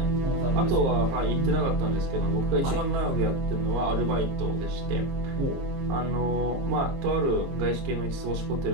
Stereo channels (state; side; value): late; left; 22 ms